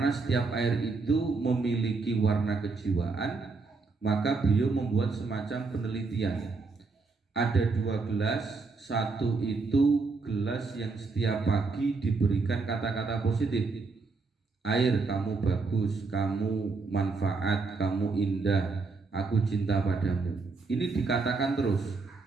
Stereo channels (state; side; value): quieter; left; 4.1 dB